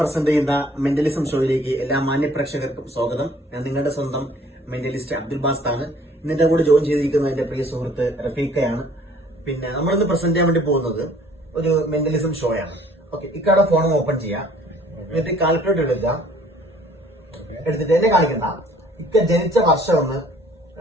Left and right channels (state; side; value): normal; both; correlation 0.56